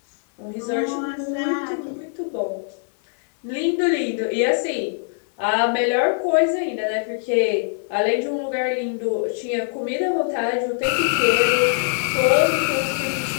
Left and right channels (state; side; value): silent; right; digital silence